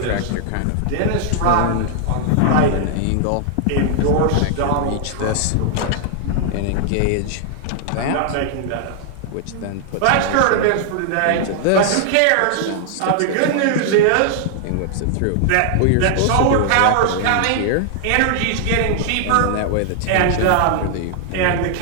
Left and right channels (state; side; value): different; both; correlation 0.00